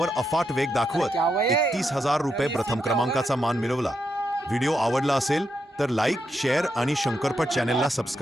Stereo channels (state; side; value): normal; both; correlation 0.83